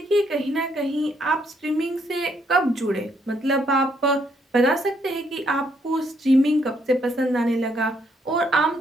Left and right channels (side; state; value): both; normal; correlation 0.72